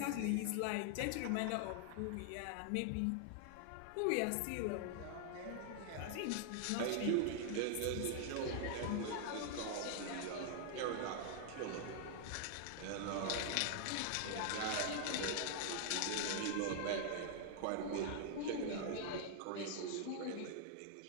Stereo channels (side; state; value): both; different; correlation 0.00